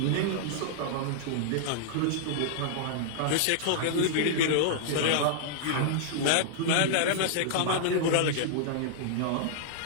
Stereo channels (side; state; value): both; different; correlation -0.01